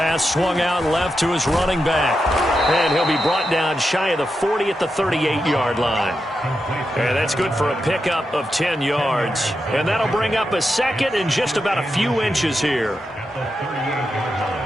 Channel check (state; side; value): normal; both; correlation 0.87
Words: swung out left to his running back. And he'll be brought down shy of the 40 at the 38-yard line. And that's good for a pickup of 10 yards. And that'll bring up a second and just about a few inches here.